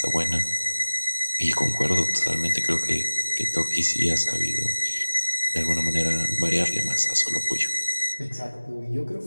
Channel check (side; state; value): both; inverted; correlation -1.00